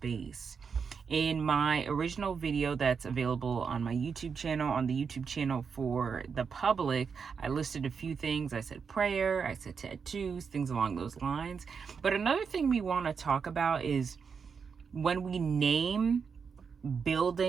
In my original video that's available on my YouTube channel, on the YouTube channel for the public, I listed a few things. I said prayer, I said tattoos, things along those lines. But another thing we want to talk about is when we name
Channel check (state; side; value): quieter; left; 6.0 dB